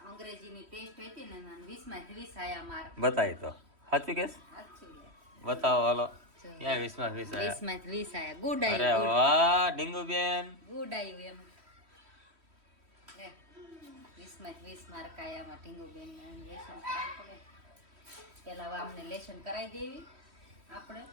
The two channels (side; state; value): left; late; 3.1 ms